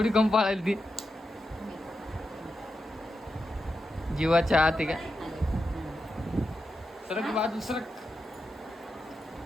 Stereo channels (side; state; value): both; normal; correlation 0.88